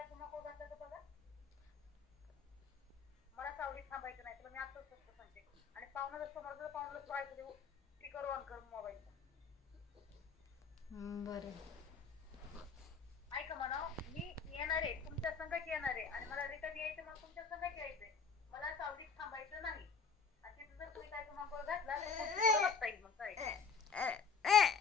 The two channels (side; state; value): right; quieter; 5.5 dB